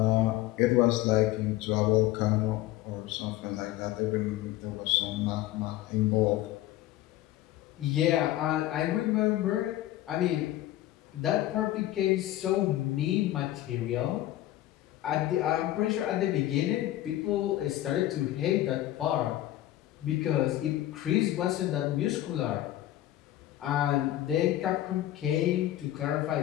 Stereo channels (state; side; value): quieter; right; 14.5 dB